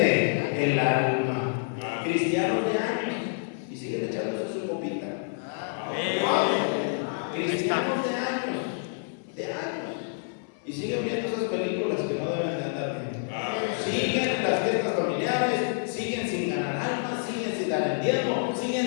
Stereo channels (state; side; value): silent; right; 59 dB below the other